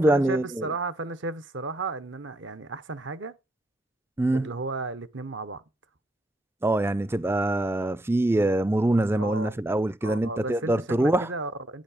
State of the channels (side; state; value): both; normal; correlation 0.78